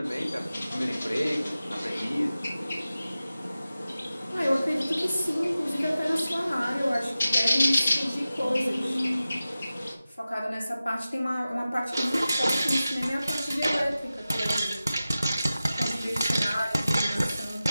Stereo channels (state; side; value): inverted; both; correlation -0.95